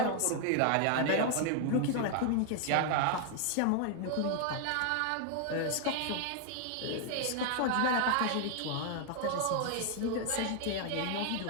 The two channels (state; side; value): different; both; correlation 0.00